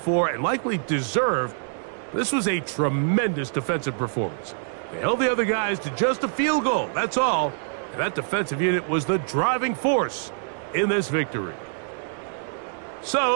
and likely deserved. This was a tremendous defensive performance. They held the other guys to just a field goal, that's all. And that defensive unit was the driving force in this victory.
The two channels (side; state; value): left; silent; digital silence